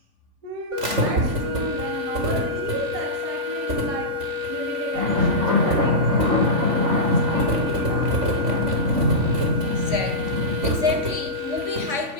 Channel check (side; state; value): left; late; 3.5 ms